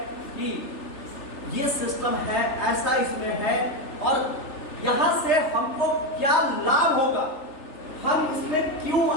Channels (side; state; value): right; late; 3.2 ms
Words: कि ये सिस्टम है, ऐसा इसमें है और यहां से हमको क्या लाभ होगा, हम इसमें क्यों